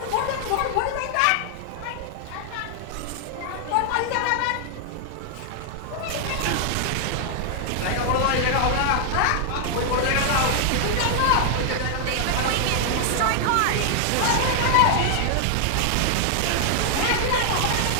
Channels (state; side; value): different; both; correlation 0.00